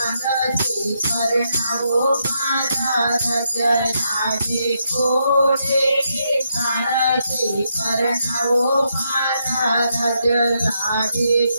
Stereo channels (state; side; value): inverted; both; correlation -0.80